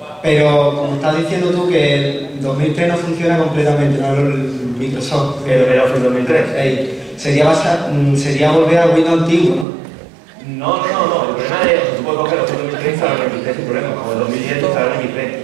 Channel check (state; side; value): drops out; left; at 9.7 s